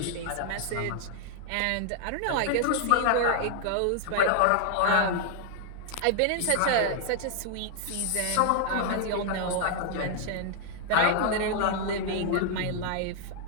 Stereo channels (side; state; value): both; different; correlation 0.00